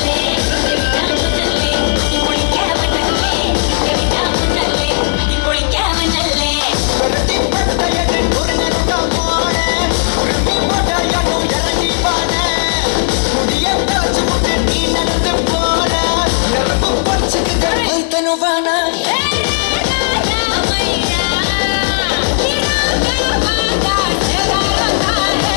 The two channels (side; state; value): right; silent; digital silence